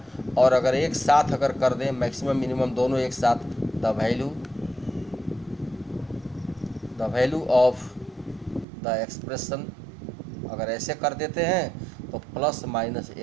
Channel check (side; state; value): left; drops out; at 8.7 s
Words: और अगर एक साथ अगर कर दें मैक्सिमम मिनिमम दोनों एक साथ, the value of the expression अगर ऐसे कर देते हैं तो प्लस माइनस